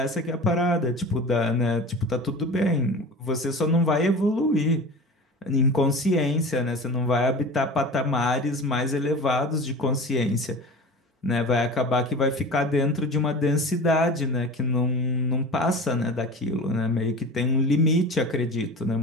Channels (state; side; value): normal; both; correlation 0.35